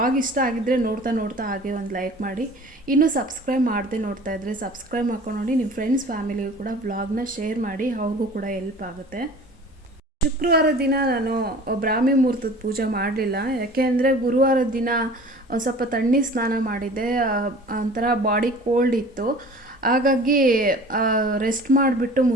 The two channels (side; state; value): both; normal; correlation 0.44